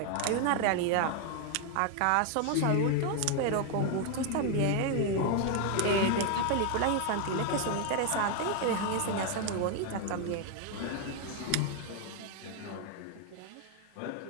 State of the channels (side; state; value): both; different; correlation 0.01